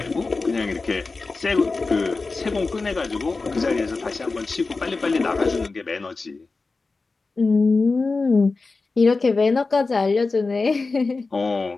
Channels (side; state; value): right; quieter; 3.8 dB